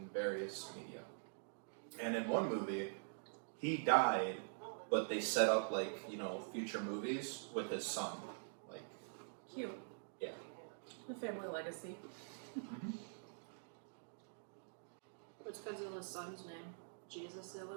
various media. And in one movie, he died, but they set up, like, you know, future movies with his son. Like, Cute. yeah. The family legacy. What's Godzilla's son's name? Jesus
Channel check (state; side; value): silent; left; digital silence